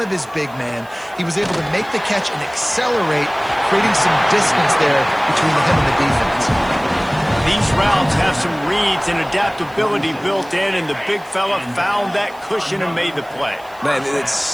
of his big man, he was able to make the catch and accelerate, creating some distance there between him and the defense. These routes have some reads and adaptability built in, and the big fella found that cushion and made the play. Man, it's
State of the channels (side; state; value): right; noise; hiss, 27 dB below the sound